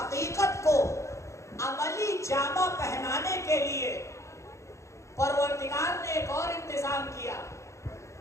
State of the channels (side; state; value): right; late; 0.14 ms